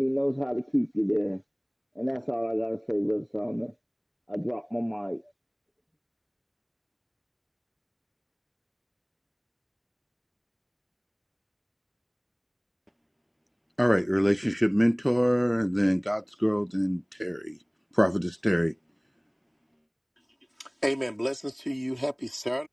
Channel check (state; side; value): identical; both; correlation 1.00